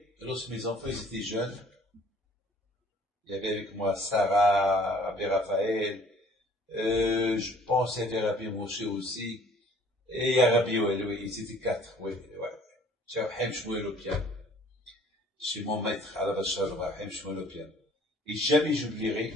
lorsque mes enfants ils étaient jeunes, il y avait avec moi Sarah, Rabbi Raphaël, je pense qu'il y avait Rabbi Moshe aussi, et il y a Rabbi Yoel, oui, ils étaient 4, oui. J'ai Rahim Shmuel au piano. Chez mon maître, à la Bachar, Rahim Shmuel au piano. Et jamais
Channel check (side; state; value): both; normal; correlation 0.55